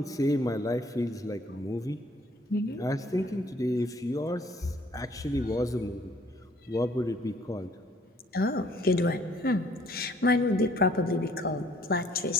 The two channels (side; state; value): both; normal; correlation 0.60